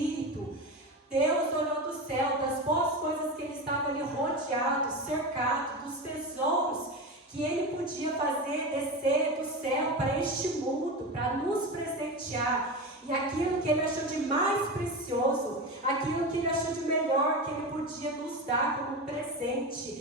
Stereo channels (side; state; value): both; normal; correlation 0.23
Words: Deus olhou do céu, das boas coisas que Ele estava ali rodeado, cercado, dos tesouros que Ele podia fazer descer do céu para este mundo, para nos presentear. E aquilo que Ele achou de mais precioso, aquilo que Ele achou de melhor, que Ele podia nos dar como